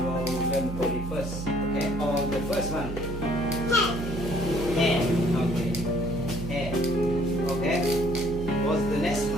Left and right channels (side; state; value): right; noise; hum, 7 dB below the sound